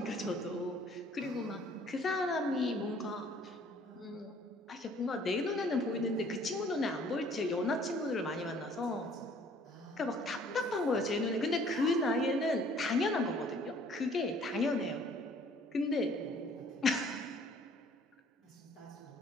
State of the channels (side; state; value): both; normal; correlation 0.57